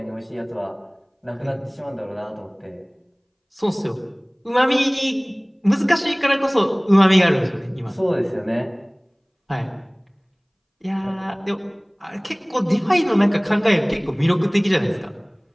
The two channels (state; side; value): identical; both; correlation 1.00